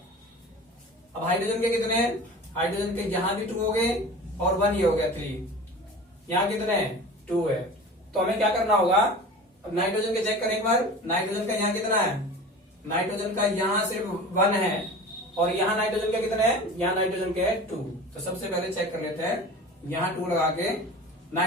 अब हाइड्रोजन के कितने हैं, हाइड्रोजन के यहाँ भी 2 हो गए और 1 ये हो गया 3, यहाँ कितने हैं 2 है। तो हमें क्या करना होगा, अब नाइट्रोजन के चेक करें एक बार, नाइट्रोजन का यहाँ कितना है, नाइट्रोजन का यहाँ सिर्फ 1 है, और यहाँ नाइट्रोजन के कितने हैं, यहाँ नाइट्रोजन के 2। तो सबसे पहले चेक कर लेते हैं, यहाँ 2 लगा के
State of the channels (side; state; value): both; normal; correlation 0.37